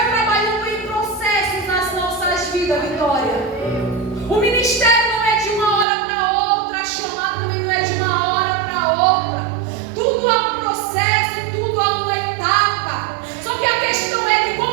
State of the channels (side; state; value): left; drops out; at 5.9 s